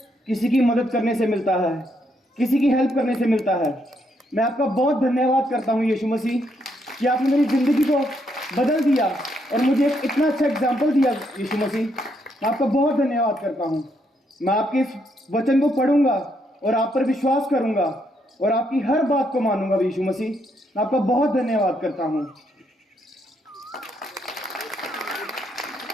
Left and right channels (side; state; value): both; normal; correlation 0.75